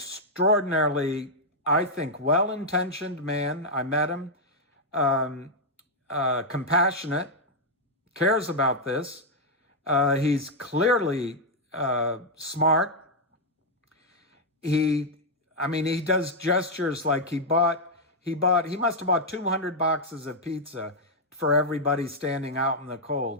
I think, well-intentioned man. I met him. Compassionate, cares about this. He's clearly smart. He does gestures like he must have bought 200 boxes of pizza for everybody standing out in the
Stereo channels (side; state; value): both; normal; correlation -0.02